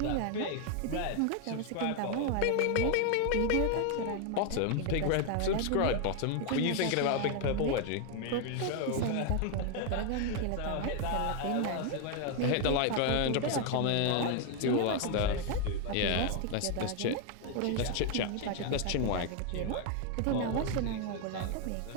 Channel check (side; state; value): both; different; correlation 0.01